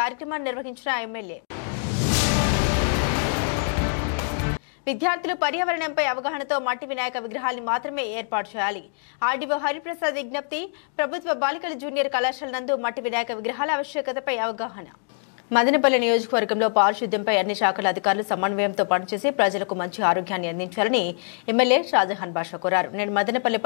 కార్యక్రమాన్ని నిర్వహించిన ఎమ్మెల్యే. విద్యార్థులు పర్యావరణంపై అవగాహనతో మట్టి వినాయక విగ్రహాన్ని మాత్రమే ఏర్పాటు చేయాలి. ఆర్డీఓ హరిప్రసాద్ విజ్ఞప్తి. ప్రభుత్వ బాలికల జూనియర్ కళాశాల నందు మట్టి వినాయక విగ్రహాల ఆవశ్యకతపై అవగాహన. మదనపల్లి నియోజకవర్గంలో పారిశుద్ధ్యంపై అన్ని శాఖల అధికారులు సమన్వయంతో పనిచేసి ప్రజలకు మంచి ఆరోగ్యాన్ని అందించాలని ఎమ్మెల్యే షాజహాన్ బాషా కోరారు. నేడు మదనపల్లి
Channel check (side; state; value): right; silent; 62 dB below the other